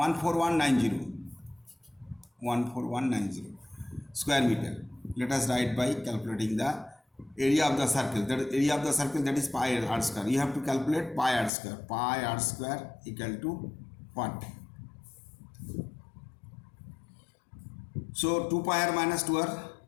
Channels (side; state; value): right; drops out; at 11.5 s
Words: square meter, let us write by calculating the area of the circle. That area of the circle, that is pi r square. You have to calculate pi r square. Pi r square equal to what? So 2 pi r minus 2 r.